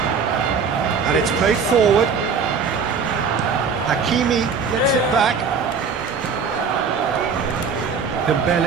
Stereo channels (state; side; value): quieter; left; 5.5 dB